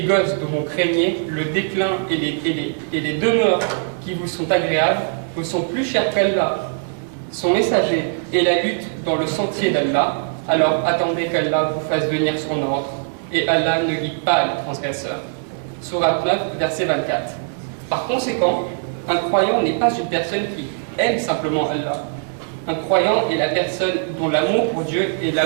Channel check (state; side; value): silent; left; digital silence